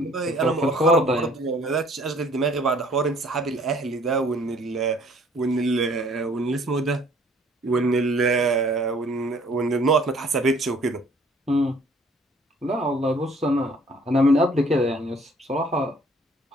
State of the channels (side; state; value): both; normal; correlation 0.57